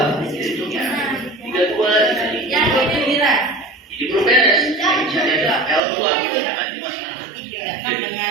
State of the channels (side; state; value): left; drops out; at 5.8 s